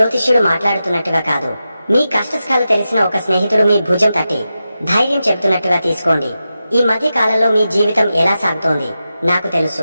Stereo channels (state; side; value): inverted; both; correlation -0.91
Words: మాట్లాడుతున్నట్టుగా కాదు, మీ కష్టసుఖాలు తెలిసిన ఒక స్నేహితుడు మీ భుజం తట్టి ధైర్యం చెబుతున్నట్టుగా తీసుకోండి. ఈ మధ్య కాలంలో మీ జీవితం ఎలా సాగుతోంది నాకు